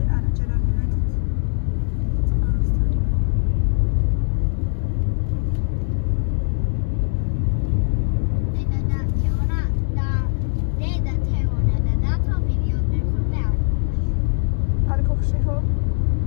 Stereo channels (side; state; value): right; silent; digital silence